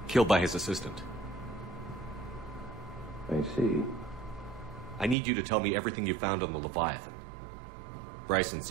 Killed by his assistant. I see. I need you to tell me everything you found on the Leviathan. Bryson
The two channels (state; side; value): drops out; left; at 5.2 s